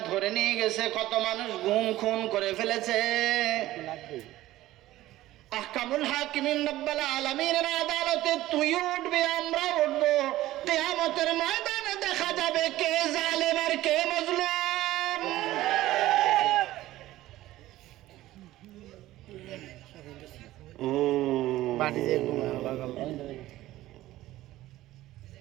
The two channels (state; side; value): quieter; left; 15.7 dB